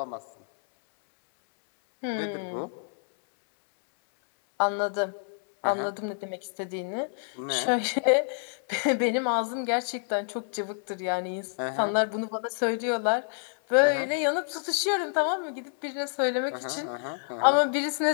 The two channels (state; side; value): silent; right; 59 dB below the other